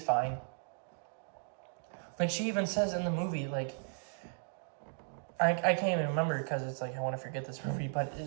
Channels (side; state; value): left; silent; digital silence